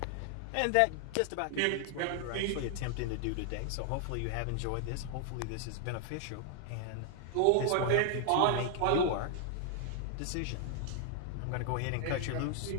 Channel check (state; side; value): different; both; correlation 0.00